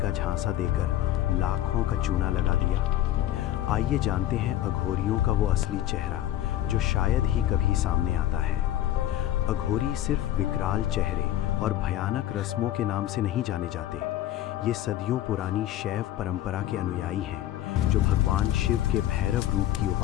झांसा देकर लाखों का चूना लगा दिया? आइए जानते हैं अघोरियों का वो असली चेहरा जो शायद ही कभी सामने आता है। अघोरी सिर्फ विकराल चेहरे और भयानक रस्मों के नाम से नहीं जाने जाते। ये सदियों पुरानी शैव परंपरा के अनुयायी हैं जो भगवान शिव के भैरव रूप की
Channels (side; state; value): right; quieter; 13.1 dB